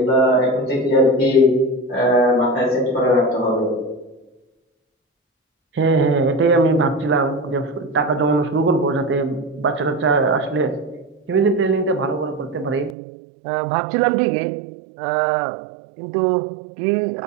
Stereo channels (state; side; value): drops out; left; at 13.0 s